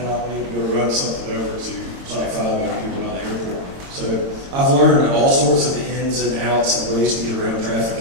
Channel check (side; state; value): left; late; 22 ms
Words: I'll need to go run something over to Site 5 out here by the airport. So I've learned all sorts of the ins and outs and ways to get around